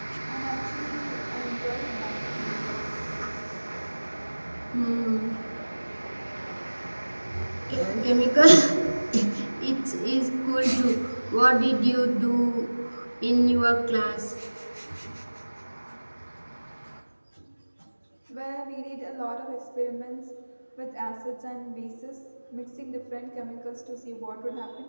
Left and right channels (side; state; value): both; inverted; correlation -1.00